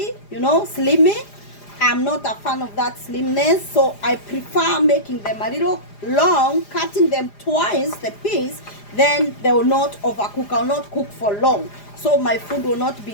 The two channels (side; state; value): right; late; 4.9 ms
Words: you know, slimy. I'm not a fan of that slimness, so I prefer making them a little long, cutting them twice the piece, then they will not overcook. I will not cook for long, so my food will not